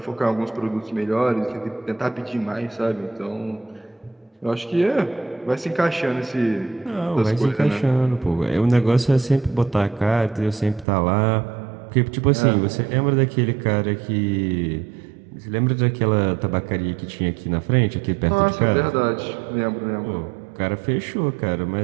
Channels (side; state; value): left; drops out; at 10.9 s